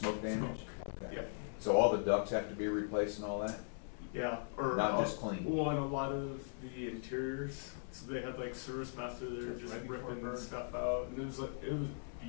damage? Okay. Yeah, So all the ducts have to be replaced and all that? yeah, or. Not just clean. Well, and a lot of the interiors, so they had like service master there just Right before ripping burn. stuff out, and it was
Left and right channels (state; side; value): silent; right; 51 dB below the other